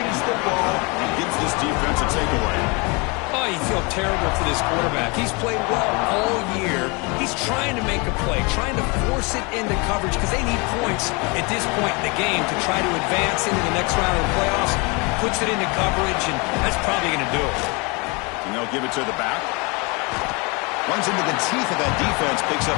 the ball and gives this defense a takeaway. Oh, you feel terrible for this quarterback. He's played well all year. He's trying to make a play, trying to force it into coverage because they need points at this point in the game to try to advance into the next round of the playoffs. Puts it into coverage, and that's probably going to do it. And they'll give it to the back. Runs into the teeth of that defense, picks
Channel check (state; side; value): quieter; right; 29.2 dB